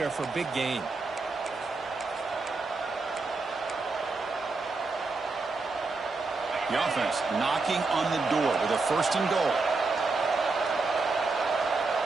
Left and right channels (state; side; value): quieter; left; 3.8 dB